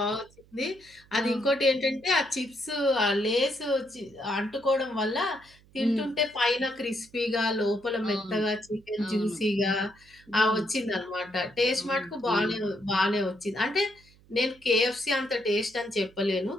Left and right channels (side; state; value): right; noise; hum, 28 dB below the sound